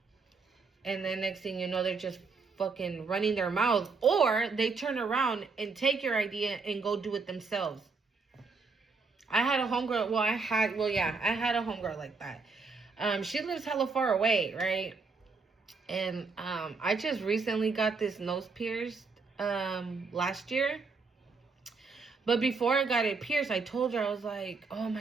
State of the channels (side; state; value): left; quieter; 4.4 dB